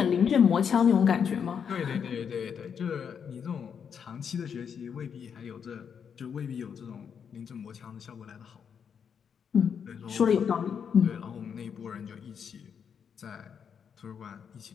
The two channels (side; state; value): right; quieter; 7.2 dB